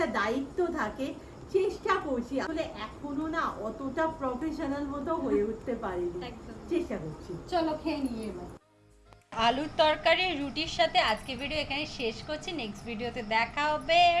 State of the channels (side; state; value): both; identical; correlation 1.00